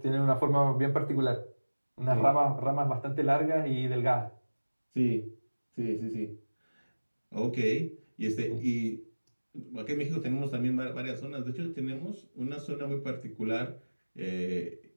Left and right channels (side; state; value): both; inverted; correlation -1.00